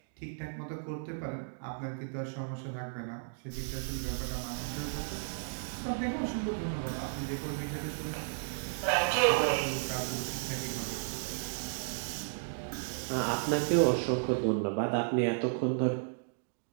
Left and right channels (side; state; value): left; silent; digital silence